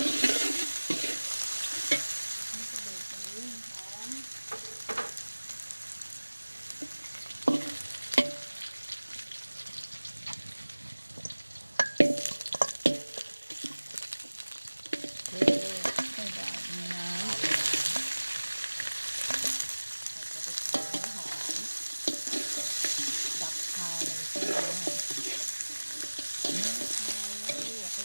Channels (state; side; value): inverted; both; correlation -1.00